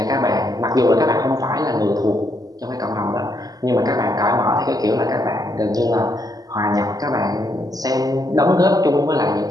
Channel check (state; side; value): late; left; 0.18 ms